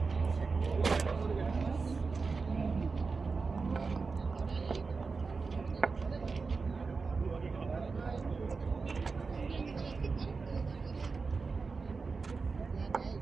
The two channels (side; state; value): left; quieter; 4.5 dB